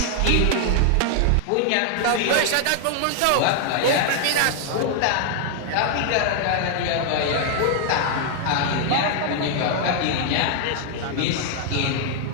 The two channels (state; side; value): different; both; correlation 0.00